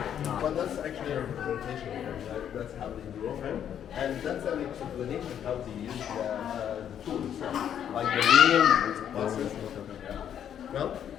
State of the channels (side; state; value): right; quieter; 9.4 dB